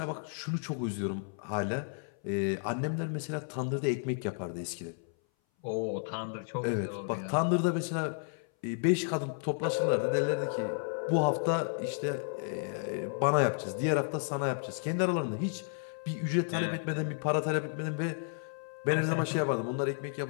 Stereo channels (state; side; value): silent; right; 56 dB below the other